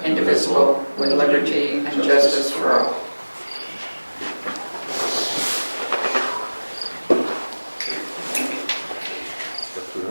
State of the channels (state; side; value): inverted; both; correlation -1.00